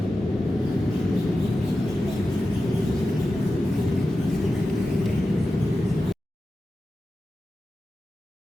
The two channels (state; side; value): normal; both; correlation 0.93